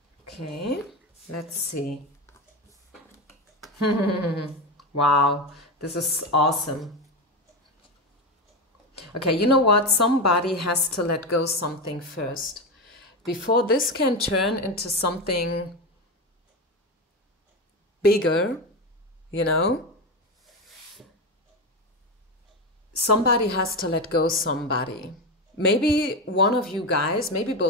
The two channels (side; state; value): both; normal; correlation 0.16